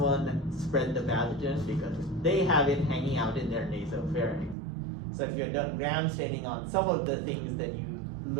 spread the pathogen because they have it hanging out in their nasopharynx. So if you had done gram staining on some of the things that you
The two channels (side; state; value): left; drops out; at 4.5 s